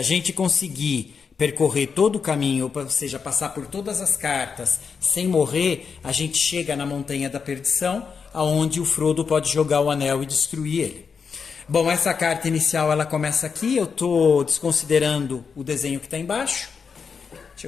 a gente conseguir percorrer todo o caminho, ou seja, passar por todas as cartas sem morrer, a gente chega na Montanha da Perdição, aonde o Frodo pode jogar o anel e destruir ele. Bom, essa carta inicial ela começa aqui. Eu estou desconsiderando o desenho que está embaixo. Deixa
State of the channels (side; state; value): right; quieter; 5.9 dB